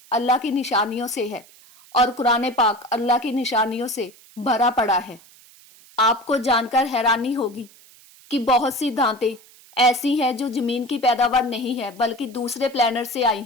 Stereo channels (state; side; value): noise; right; hiss, 25 dB below the sound